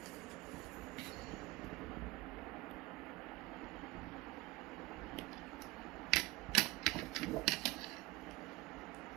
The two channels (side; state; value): left; quieter; 20.9 dB